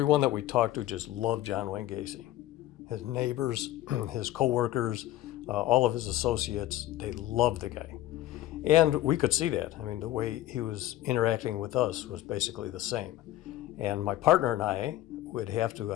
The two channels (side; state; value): right; quieter; 14.8 dB